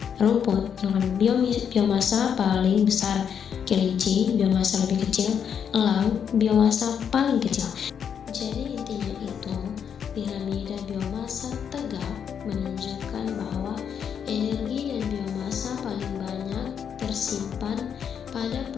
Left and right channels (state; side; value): quieter; right; 7.8 dB